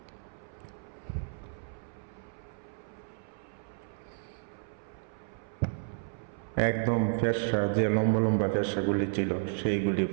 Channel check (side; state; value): left; silent; 56 dB below the other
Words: একদম ফেরসা, যে লম্বা লম্বা ফেরসাগুলি ছিল সেইগুলি